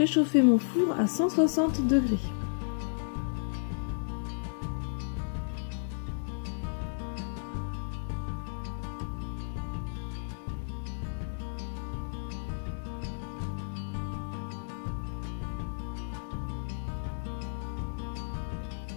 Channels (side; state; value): right; silent; digital silence